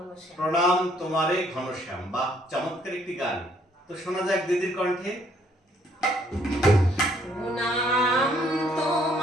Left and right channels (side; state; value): both; normal; correlation 0.66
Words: প্রণাম তোমারে ঘনশ্যাম। বাহ, চমৎকার একটি গান। তো শোনা যাক দিদির কণ্ঠে। প্রণাম